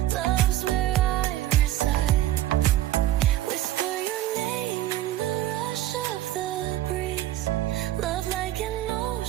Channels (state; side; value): quieter; left; 14.1 dB